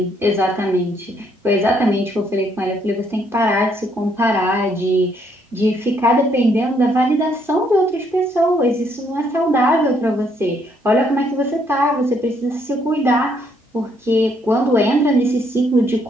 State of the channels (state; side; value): normal; both; correlation 0.70